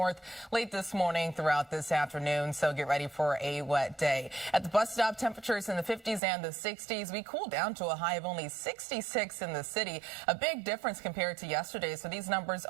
late this morning throughout this afternoon. So get ready for a wet day. At the bus stop, temperatures in the 50s and the 60s. We cooled down to a high of only 66 in the city. A big difference compared to yesterday. So these numbers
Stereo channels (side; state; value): left; drops out; at 6.2 s